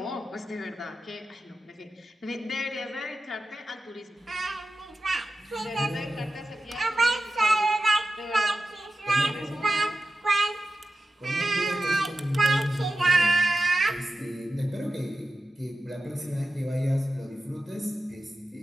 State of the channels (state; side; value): normal; both; correlation 0.92